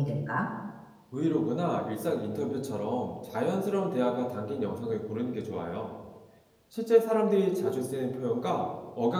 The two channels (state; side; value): identical; both; correlation 1.00